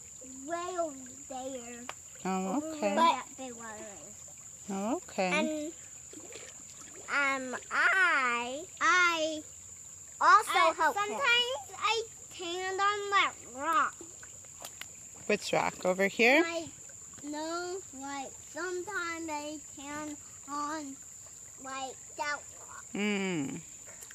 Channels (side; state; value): both; identical; correlation 1.00